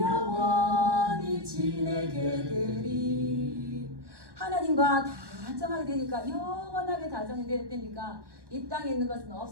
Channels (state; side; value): late; left; 1.1 ms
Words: 지내게 되리. 하나님과 다정하게 되니까 영원하게 다정이 되니까 이 땅에 있는 것은